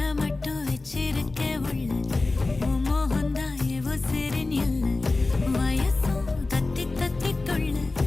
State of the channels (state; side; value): quieter; right; 3.3 dB